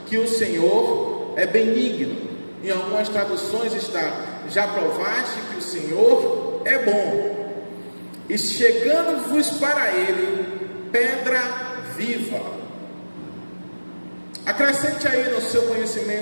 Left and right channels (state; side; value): inverted; both; correlation -1.00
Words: que o Senhor é benigno. Em algumas traduções está: já provaste que o Senhor é bom. E chegando-vos para ele, pedra viva. Acrescente aí no seu